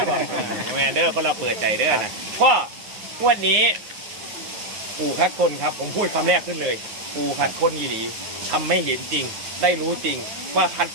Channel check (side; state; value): left; late; 9.5 ms